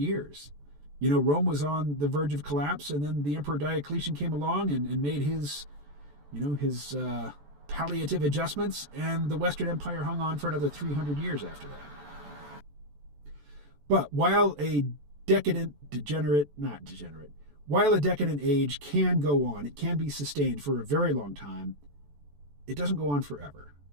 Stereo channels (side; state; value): left; late; 14 ms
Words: Rome was on the verge of collapse, and then the Emperor Diocletian came along and made his palliative adjustments, and the Western Empire hung on for another 300 years after that. But while a decadent age can go on, it can be sustained for a very long time, it doesn't go on forever.